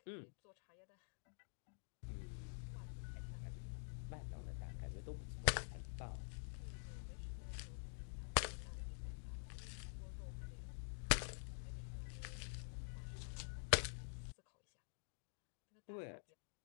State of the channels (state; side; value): silent; right; digital silence